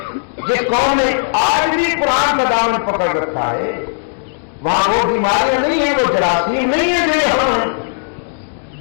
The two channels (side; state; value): right; silent; digital silence